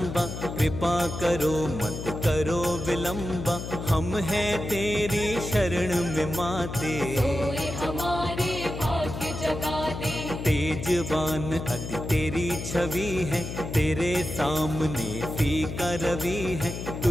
कृपा करो मत करो विलंबा, हम हैं तेरी शरण में माते। सोए हमारे भाग्य जगा दे, तेजवान अति तेरी छवि है, तेरे सामने फीका रवि है,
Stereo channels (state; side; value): noise; left; hum, 7 dB below the sound